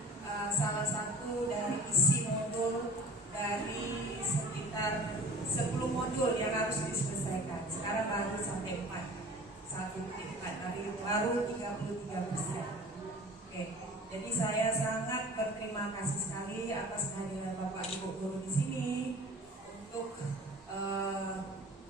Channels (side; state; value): both; normal; correlation 0.44